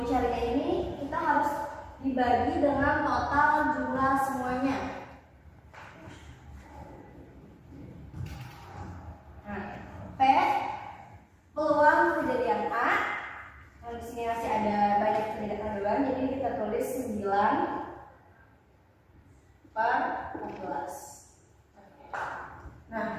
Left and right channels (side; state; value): both; identical; correlation 1.00